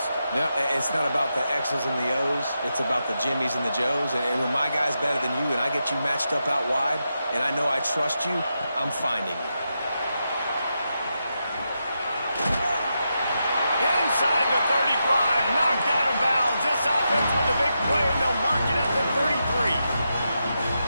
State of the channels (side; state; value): both; inverted; correlation -0.86